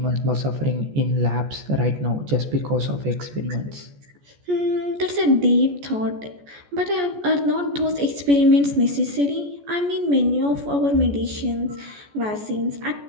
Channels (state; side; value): late; left; 14 ms